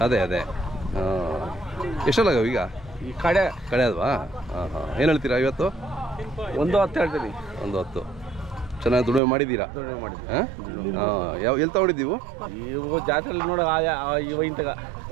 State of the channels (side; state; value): left; drops out; at 9.2 s